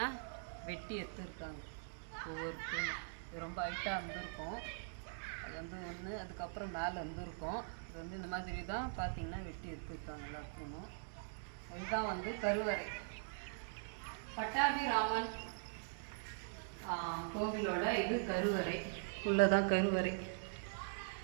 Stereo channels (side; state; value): left; silent; digital silence